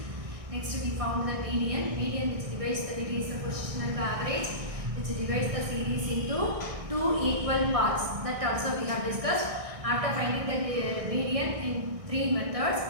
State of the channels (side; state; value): left; late; 1.6 ms